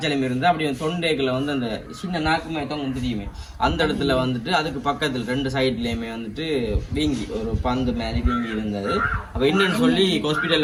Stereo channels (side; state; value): both; identical; correlation 1.00